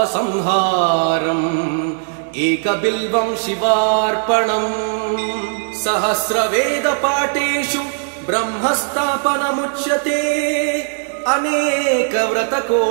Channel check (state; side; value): silent; left; digital silence